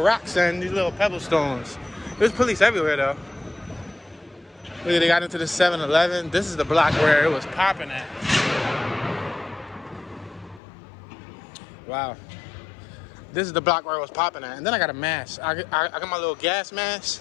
rocks and these little pebble stones. There's police everywhere though. Look, they got into the 7-Eleven. This is the block where it was popping at. Wow. This is the block where it was popping at. And then I got a mask. I got my little gas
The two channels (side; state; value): right; drops out; at 10.6 s